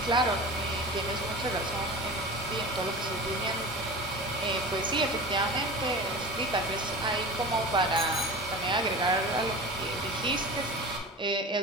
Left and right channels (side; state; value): both; normal; correlation 0.33